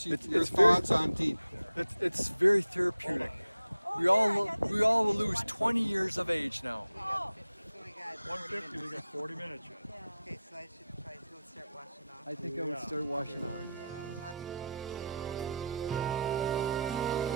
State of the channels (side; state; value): both; inverted; correlation -0.83